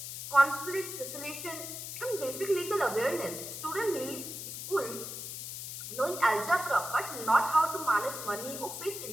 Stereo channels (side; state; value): left; noise; hiss, 7 dB below the sound